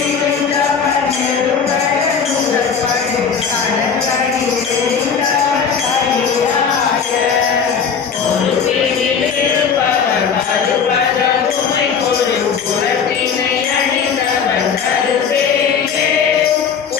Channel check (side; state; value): right; quieter; 6.5 dB